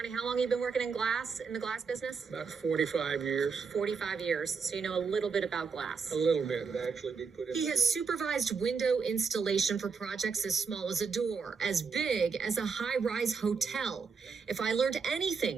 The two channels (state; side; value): quieter; left; 5.4 dB